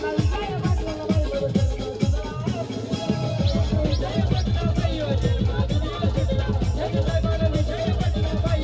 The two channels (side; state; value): both; identical; correlation 1.00